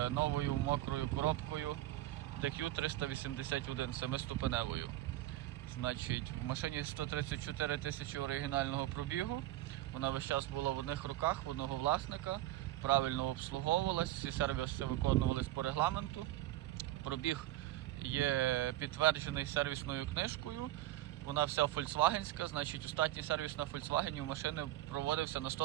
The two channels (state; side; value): quieter; left; 15.3 dB